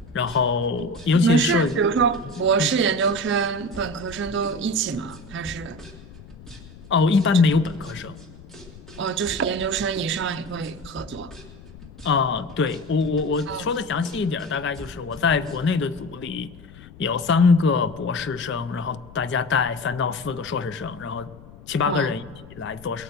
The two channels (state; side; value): noise; left; rumble, 19 dB below the sound